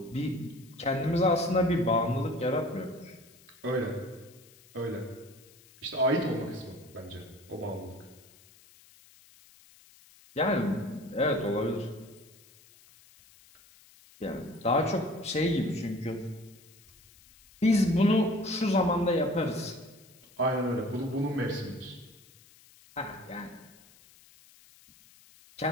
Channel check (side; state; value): left; noise; hiss, 26 dB below the sound